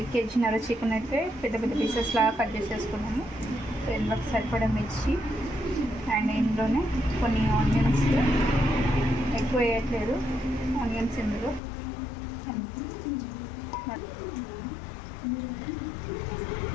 కేజీన్నర చికెన్ అయితే పెద్ద పెద్ద పీసెస్ లాగా కట్ చేసేసుకున్నాము. సో ఇందులోకి సరిపడా మిర్చి అండ్ ఇందులోనే కొన్ని ఆనియన్స్, ఎక్కువ వేయట్లేదు ఆనియన్స్ ఇందులో.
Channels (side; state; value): right; drops out; at 11.6 s